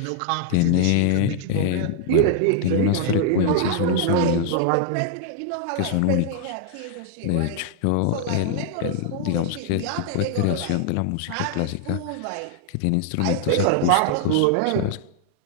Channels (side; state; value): both; different; correlation 0.00